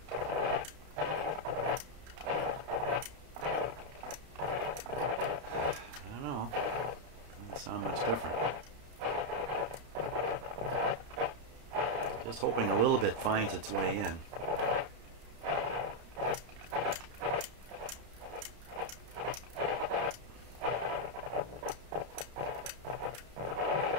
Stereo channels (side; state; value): left; late; 32 ms